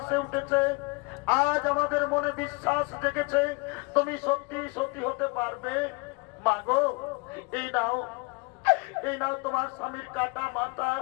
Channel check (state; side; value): quieter; right; 27.9 dB